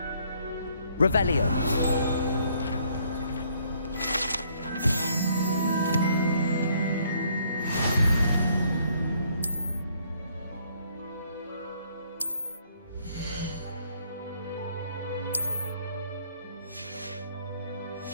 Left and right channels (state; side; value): inverted; both; correlation -0.66